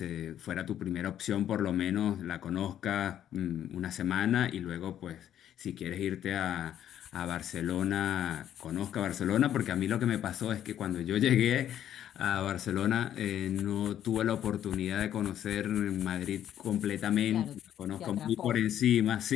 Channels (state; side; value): quieter; right; 10.8 dB